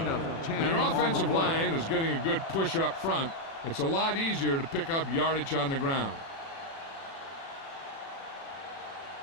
When your offensive line is getting a good push up front, it's a lot easier to pick up yardage on the ground.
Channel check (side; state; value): right; late; 36 ms